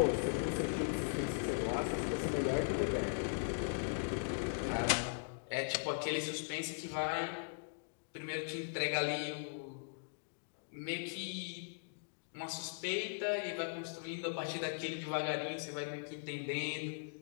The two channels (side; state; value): right; silent; digital silence